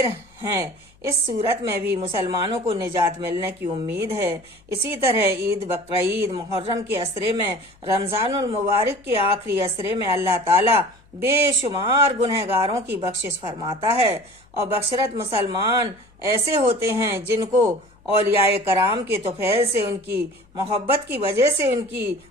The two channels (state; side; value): noise; left; hum, 30 dB below the sound